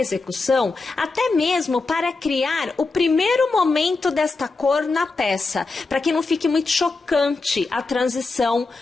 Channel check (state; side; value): quieter; right; 3.8 dB